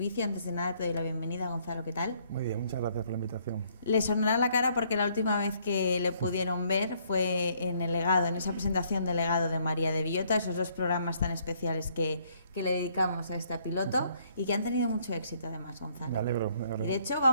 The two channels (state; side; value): inverted; both; correlation -0.66